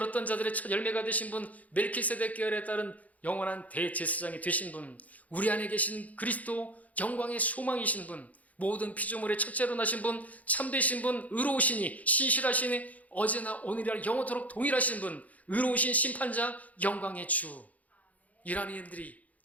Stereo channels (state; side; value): late; right; 0.073 ms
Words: 자들의 첫 열매가 되신 분, 멜키세덱 계열에 따른 영원한 대제사장이 되신 분, 우리 안에 계신 그리스도 영광의 소망이신 분, 모든 피조물의 첫째로 나신 분, 참되신 분, 의로우시니 신실하시니 어제나 오늘이나 영원토록 동일하신 분, 의로우신 심판자, 영광의 주. 이라는 이름들이